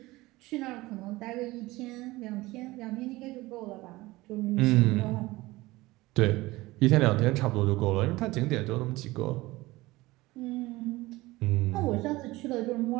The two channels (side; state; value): left; quieter; 19.8 dB